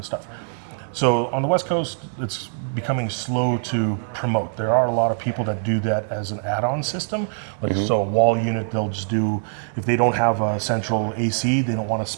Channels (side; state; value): left; silent; digital silence